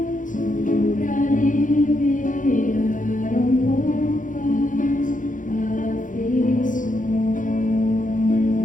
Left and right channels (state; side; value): late; right; 0.38 ms